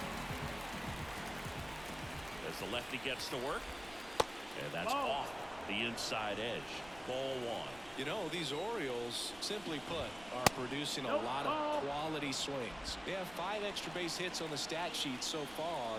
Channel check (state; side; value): noise; right; rumble, 18 dB below the sound